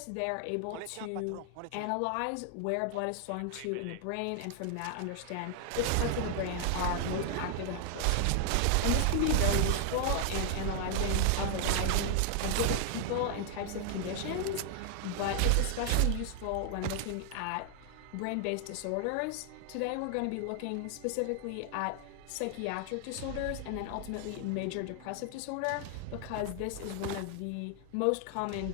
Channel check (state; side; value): different; both; correlation 0.00